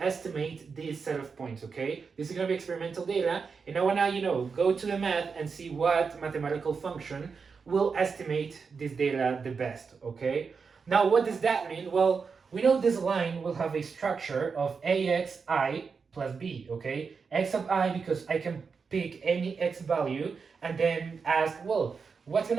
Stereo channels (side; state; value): left; quieter; 5.4 dB